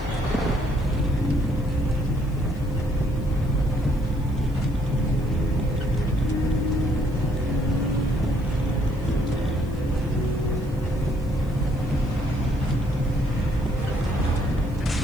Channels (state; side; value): noise; left; hiss, 27 dB below the sound